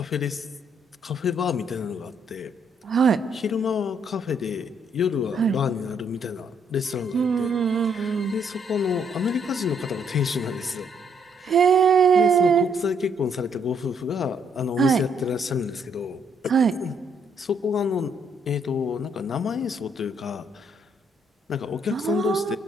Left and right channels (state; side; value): normal; both; correlation 0.70